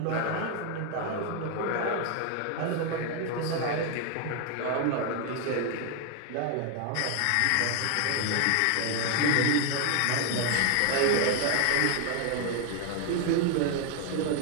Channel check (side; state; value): both; different; correlation 0.01